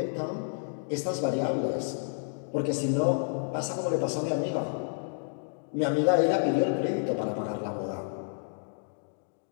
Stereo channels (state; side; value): silent; right; digital silence